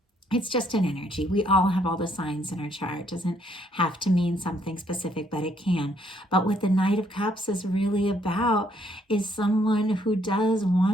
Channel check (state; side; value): normal; both; correlation 0.69